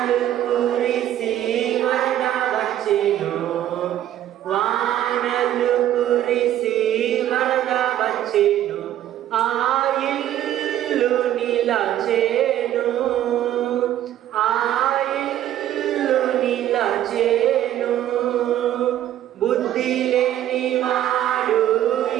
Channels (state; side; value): quieter; left; 12.2 dB